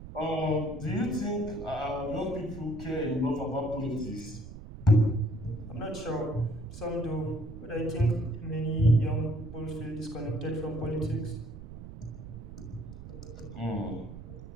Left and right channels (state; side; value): noise; right; rumble, 12 dB below the sound